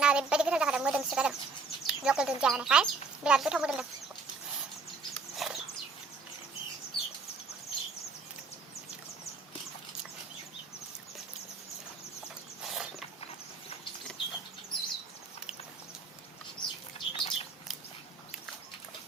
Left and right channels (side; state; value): left; quieter; 4.3 dB